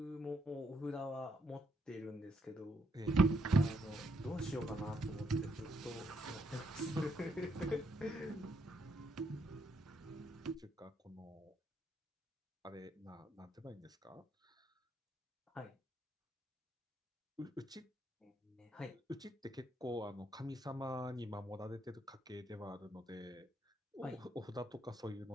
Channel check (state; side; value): normal; both; correlation 0.75